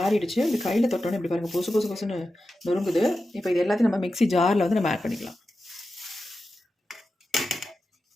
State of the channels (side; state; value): both; normal; correlation 0.92